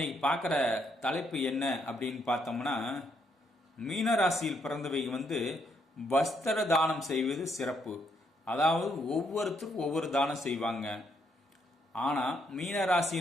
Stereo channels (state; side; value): normal; both; correlation 0.74